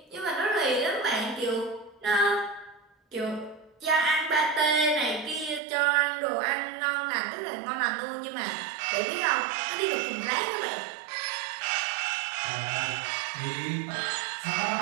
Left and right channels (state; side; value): drops out; left; at 5.6 s